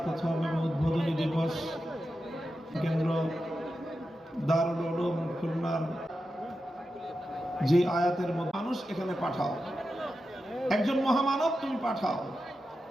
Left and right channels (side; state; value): both; normal; correlation 0.90